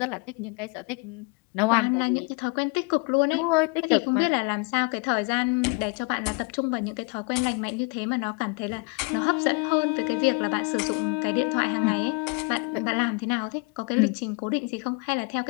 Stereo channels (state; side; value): quieter; right; 32.3 dB